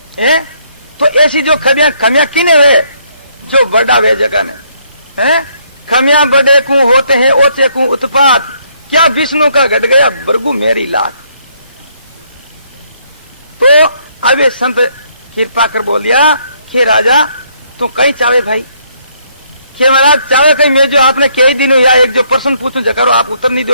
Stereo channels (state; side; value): inverted; both; correlation -0.69